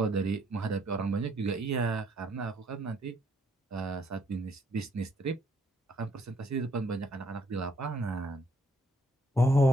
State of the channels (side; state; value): both; normal; correlation 0.68